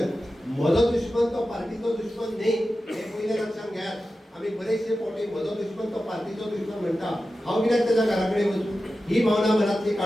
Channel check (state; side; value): normal; both; correlation 0.93